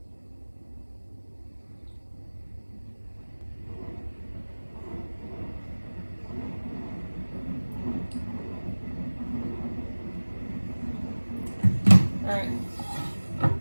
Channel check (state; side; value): inverted; both; correlation -1.00